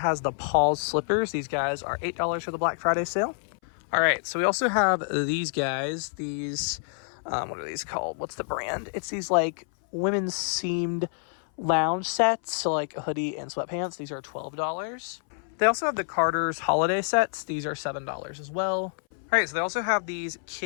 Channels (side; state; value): right; silent; 60 dB below the other